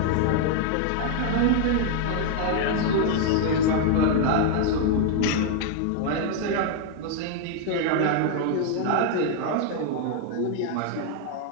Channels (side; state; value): both; different; correlation 0.00